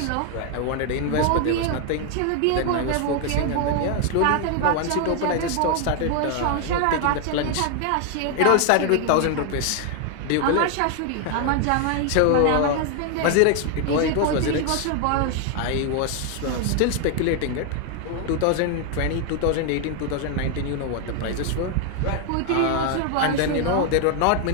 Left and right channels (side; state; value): both; different; correlation 0.00